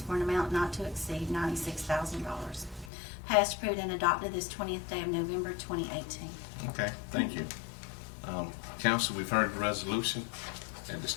for an amount not to exceed $96,000. Passed, approved, and adopted this 20th day of November 2018. Okay, thank you. Council, we've heard the resolution. At this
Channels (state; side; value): drops out; right; at 2.9 s